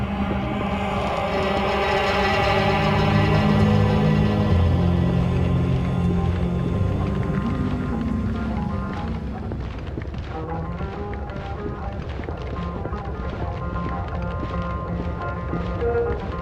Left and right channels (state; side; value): identical; both; correlation 1.00